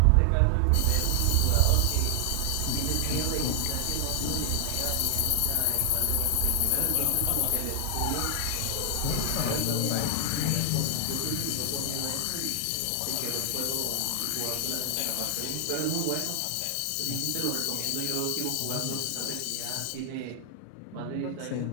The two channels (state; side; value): different; both; correlation 0.00